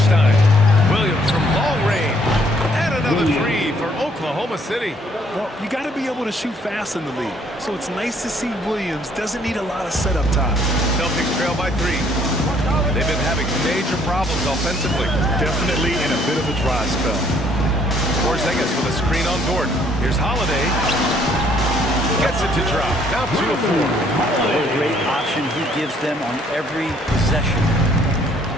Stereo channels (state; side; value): normal; both; correlation 0.64